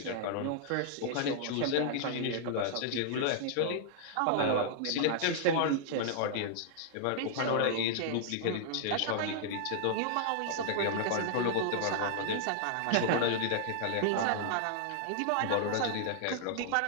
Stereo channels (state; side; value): different; both; correlation -0.01